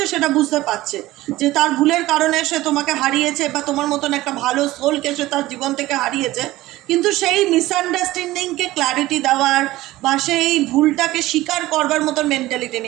সেটা বুঝতে পারছে, যে তার ভুলের কারণে সে তোমাকে হারিয়েছে বা তোমার মতন একটা ভালো সোলকে সে তার জীবন থেকে হারিয়েছে। কিন্তু সেই মিসআন্ডারস্ট্যান্ডিংকে ক্ল্যারিটি দেওয়ার বা সেই ভুলটাকে স্বীকার করবার মতন মেন্টালিটি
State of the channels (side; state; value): left; quieter; 17.2 dB